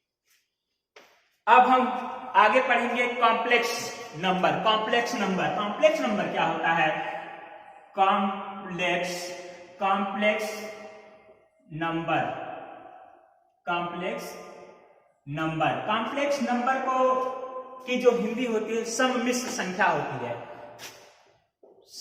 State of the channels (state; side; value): identical; both; correlation 1.00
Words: अब हम आगे पढ़ेंगे कॉम्प्लेक्स नंबर। कॉम्प्लेक्स नंबर क्या होता है, कॉम्प्लेक्स नंबर को की जो हिंदी होती है सम्मिश्र संख्या होती है।